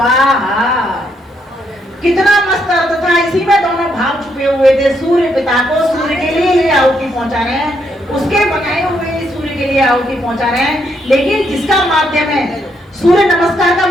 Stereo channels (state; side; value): normal; both; correlation 0.76